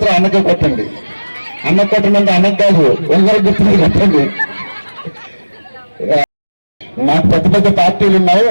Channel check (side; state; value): both; inverted; correlation -1.00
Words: అన్నకే కొట్టండి. అన్నకు కొట్టమంటే అన్నకు కాదు, ఒకరి గుర్తు కొట్టండి. నాకు పెద్ద పెద్ద పార్టీలు ఉన్నాయి,